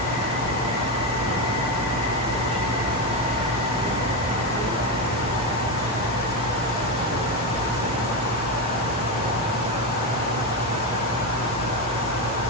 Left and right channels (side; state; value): both; normal; correlation 0.12